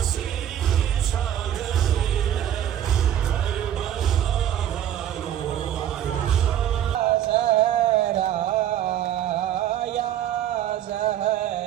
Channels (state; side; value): quieter; left; 10.9 dB